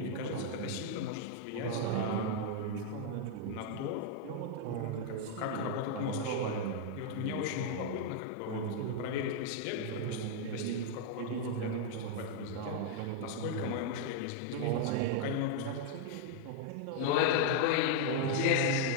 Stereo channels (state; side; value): different; both; correlation 0.00